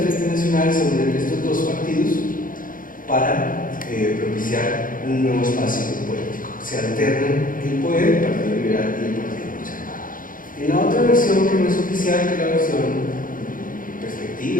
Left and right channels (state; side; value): late; right; 0.40 ms